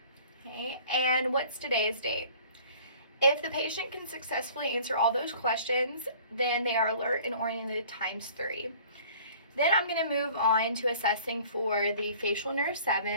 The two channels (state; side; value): inverted; both; correlation -0.50